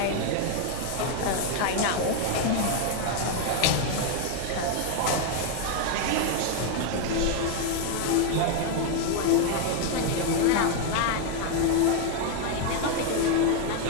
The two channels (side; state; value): both; different; correlation 0.01